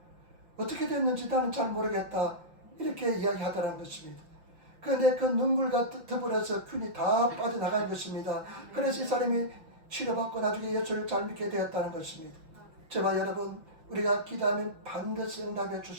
어떻게 됐는지 나는 잘 모르겠다. 이렇게 이야기하더라는 것입니다. 그런데 그 눈물과 더불어서 균이 다 빠져나간 것입니다. 그래서 이 사람이 치료받고 나중에 예수를 잘 믿게 되었다는 것입니다. 저와 여러분 우리가 기도하면 반드시 응답해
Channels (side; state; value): left; late; 5.9 ms